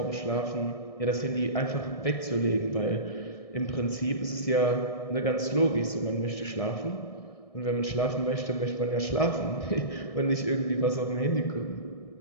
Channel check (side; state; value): right; late; 1.6 ms